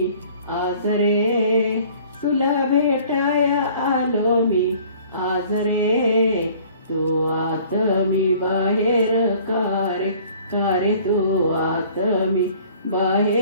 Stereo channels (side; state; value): both; inverted; correlation -0.52